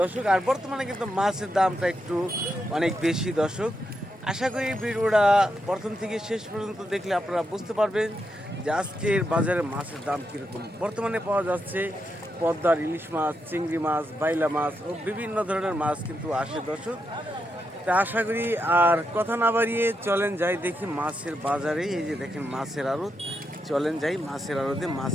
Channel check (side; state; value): both; normal; correlation 0.83